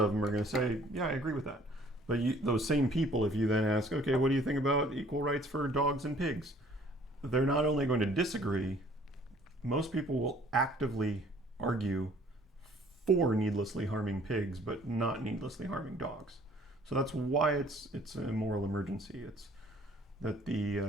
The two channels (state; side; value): normal; both; correlation 0.56